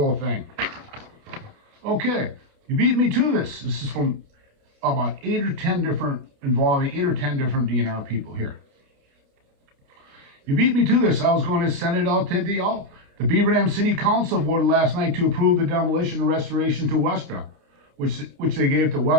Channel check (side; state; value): left; late; 29 ms